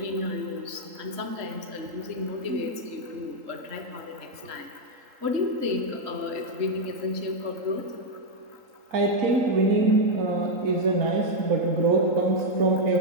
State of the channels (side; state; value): left; late; 3.8 ms